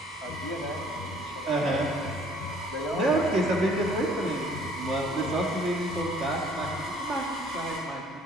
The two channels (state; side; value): normal; both; correlation 0.57